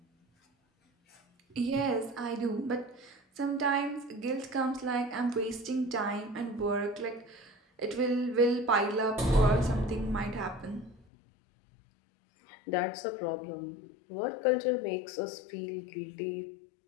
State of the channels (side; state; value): right; drops out; at 11.1 s